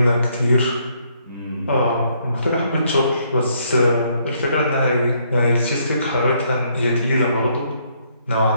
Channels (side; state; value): both; inverted; correlation -0.70